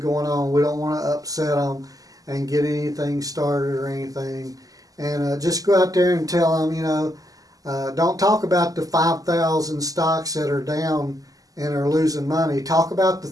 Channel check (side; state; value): left; late; 0.17 ms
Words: on. We don't want to upset them and get anything started or anything. And just go out there and tell them, don't talk about the 5,000 stocks that are down and are losing money. Talk about the